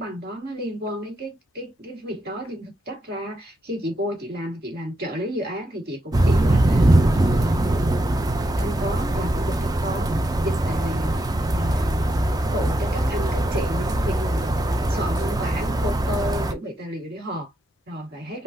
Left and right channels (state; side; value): normal; both; correlation 0.83